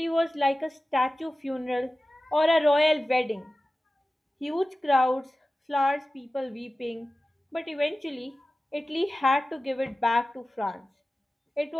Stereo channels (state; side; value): normal; both; correlation 0.95